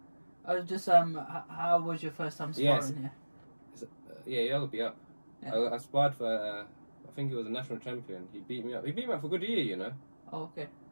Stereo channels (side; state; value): both; inverted; correlation -1.00